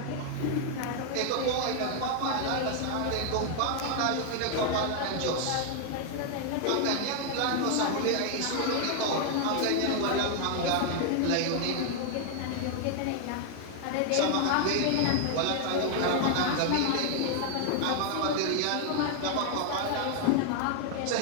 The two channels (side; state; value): both; different; correlation 0.00